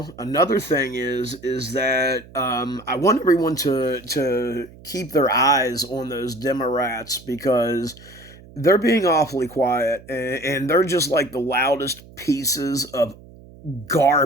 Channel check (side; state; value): right; noise; hum, 21 dB below the sound